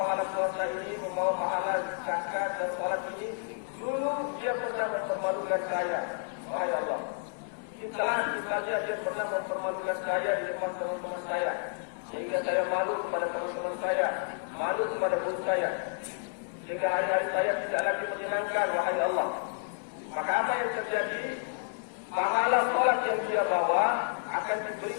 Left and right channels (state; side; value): silent; right; digital silence